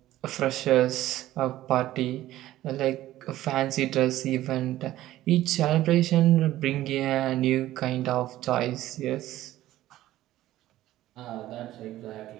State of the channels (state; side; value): quieter; left; 14.7 dB